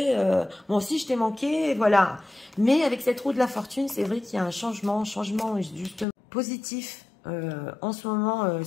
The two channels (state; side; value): drops out; right; at 6.1 s